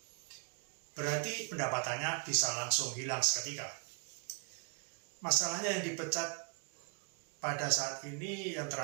Berarti pendapatannya bisa langsung hilang seketika. Masalahnya yang dipecat pada saat ini, yang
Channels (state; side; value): quieter; left; 38.6 dB